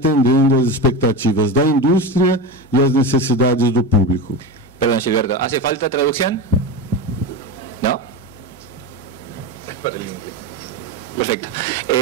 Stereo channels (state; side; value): normal; both; correlation 0.22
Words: às expectativas da indústria e às necessidades do público. Perdón, Gilberto, ¿hace falta traducción? ¿No? Perfecto.